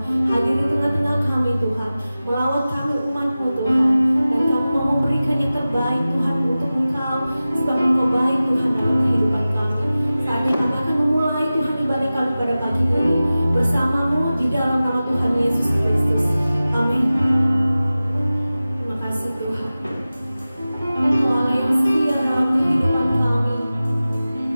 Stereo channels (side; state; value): both; inverted; correlation -0.96